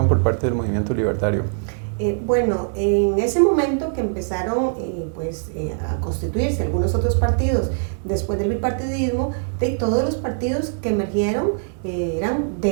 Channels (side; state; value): left; silent; digital silence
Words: por parte del Movimiento Libertario? Bueno, en ese momento que empezaron a constituirse algunos otros partidos después del bipartidismo, todos los partidos que emergieron eran